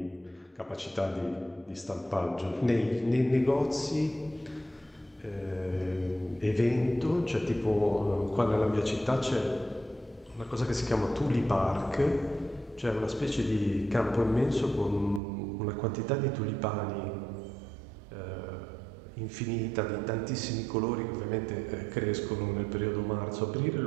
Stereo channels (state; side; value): drops out; left; at 15.2 s